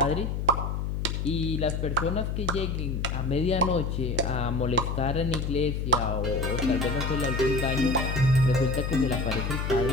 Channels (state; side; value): noise; left; hum, 2 dB below the sound